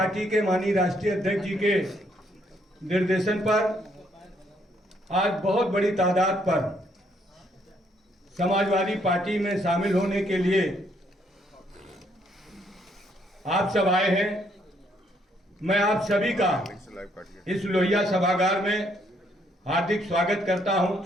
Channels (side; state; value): both; normal; correlation 0.70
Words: के माननीय राष्ट्रीय अध्यक्ष जी के निर्देशन पर आज बहुत बड़ी तादाद पर समाजवादी पार्टी में शामिल होने के लिए आप सब आए हैं। मैं आप सभी का इस लोहिया सभागार में हार्दिक स्वागत करता हूं,